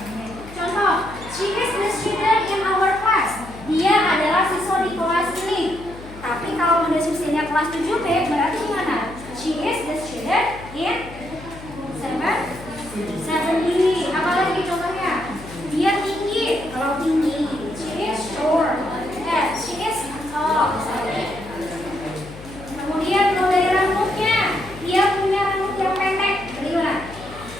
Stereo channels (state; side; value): noise; left; hum, 16 dB below the sound